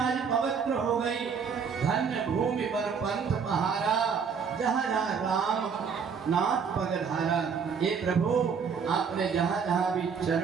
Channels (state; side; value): quieter; left; 6.3 dB